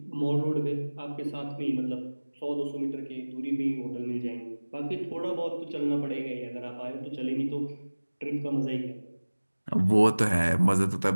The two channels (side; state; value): both; inverted; correlation -1.00